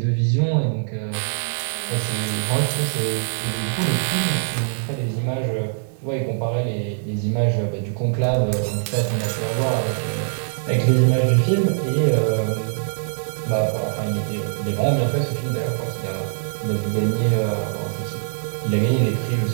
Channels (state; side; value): silent; left; digital silence